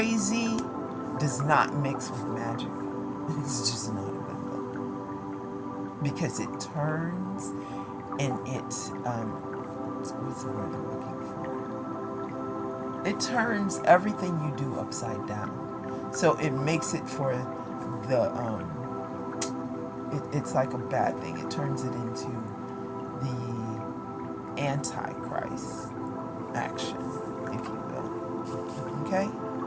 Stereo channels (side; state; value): both; identical; correlation 1.00